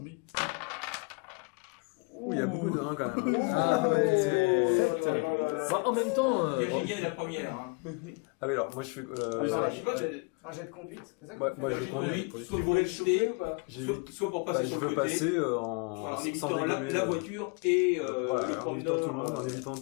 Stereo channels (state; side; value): quieter; right; 33.2 dB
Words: Ouh, il y a beaucoup de 1 quand même. Ah ouais. Bah, en même temps... Virginia est la première. Hein. Ah oui, alors moi je fais. Ah, Je sais pas, Un jet de conduite, c'est ça Ouais, moi, je conduis. soit pour éviter, ou pas soit pour passer Bah, sur je le veux côté, passer voilà, en en sans évitant dégommer. la voiture et Voilà, le en évitant tout le monde, en promeneur. évitant